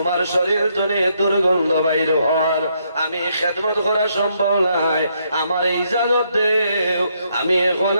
শরীর তনে দুর্গন্ধ বাইর হওয়ার আমি খেদমত করা সম্ভব নাই, আমার ইজাজত দেও, আমি এখন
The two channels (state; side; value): inverted; both; correlation -0.74